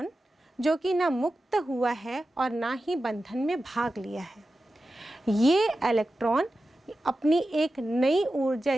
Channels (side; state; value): both; normal; correlation 0.93